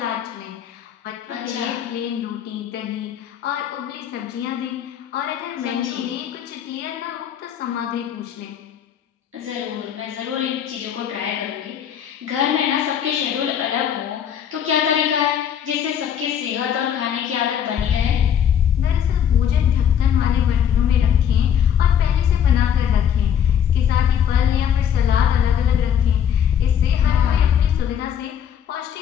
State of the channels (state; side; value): quieter; right; 8.9 dB